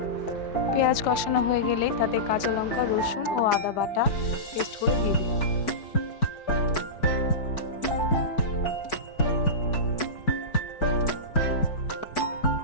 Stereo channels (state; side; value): late; right; 4.6 ms